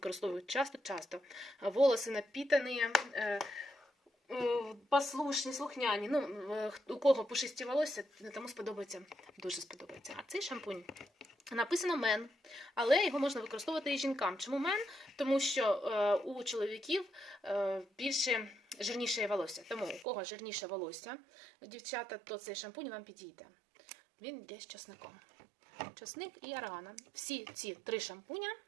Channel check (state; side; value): drops out; left; at 20.1 s